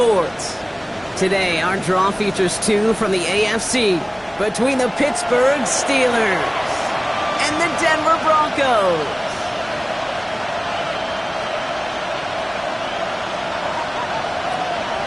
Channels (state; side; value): identical; both; correlation 1.00